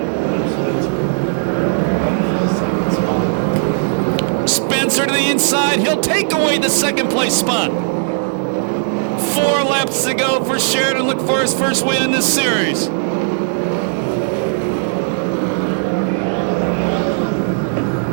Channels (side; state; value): left; silent; digital silence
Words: Spencer to the inside. He'll take away the 2nd place spot. 4 laps to go for Sheridan. Look for his first win in this series.